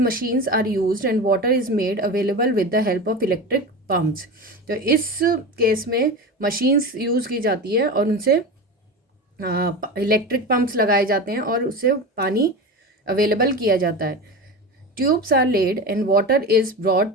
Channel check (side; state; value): both; normal; correlation 0.25